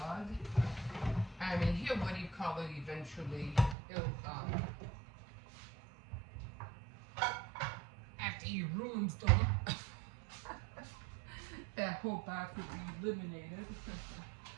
I mean, eventually it'll after he ruins them, that whole box will be eliminated.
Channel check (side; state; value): left; drops out; at 3.8 s